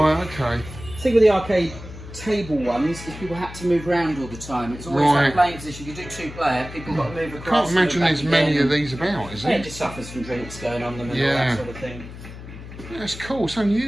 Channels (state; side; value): noise; left; hum, 13 dB below the sound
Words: okay. the thing with the arcade table ones is people had to move around all the time. It's always Right. like playing position. You do 2-player, people got to move I across. can't imagine move there's back many again. of these about, is Yeah, it it? just suffers from drinks going on them and all Yeah. that sort of thing. Yeah, it's cool, it's